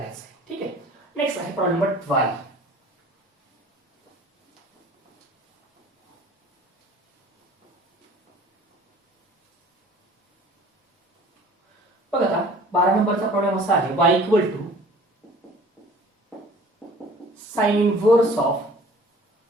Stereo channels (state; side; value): normal; both; correlation 0.49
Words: आहे. ठीक आहे, नेक्स्ट आहे प्रॉब्लेम नंबर 12. बघा आता 12 नंबरचा प्रॉब्लेम असा आहे, y equal to sine inverse of